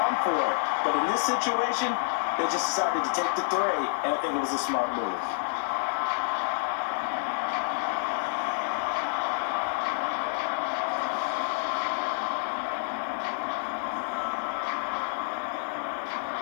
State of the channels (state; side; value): silent; right; digital silence